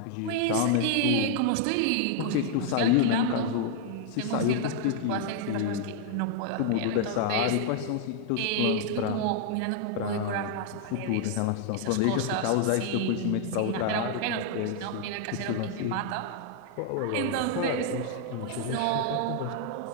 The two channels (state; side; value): different; both; correlation 0.00